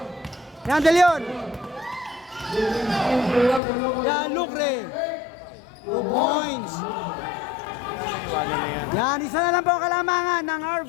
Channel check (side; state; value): right; drops out; at 3.6 s